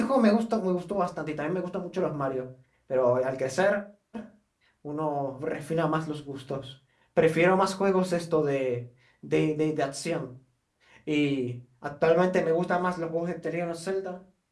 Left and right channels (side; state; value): both; identical; correlation 1.00